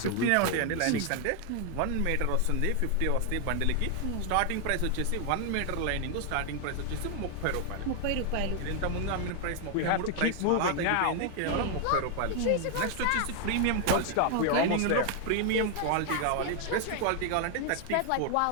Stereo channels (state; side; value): different; both; correlation 0.00